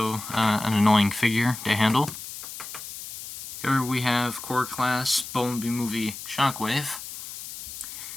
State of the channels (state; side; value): noise; left; hiss, 11 dB below the sound